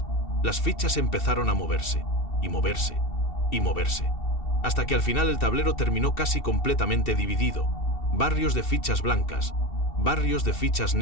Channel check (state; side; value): late; right; 2.7 ms